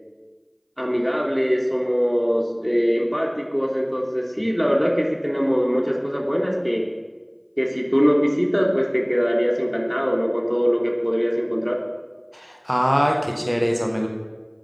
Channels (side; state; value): both; identical; correlation 1.00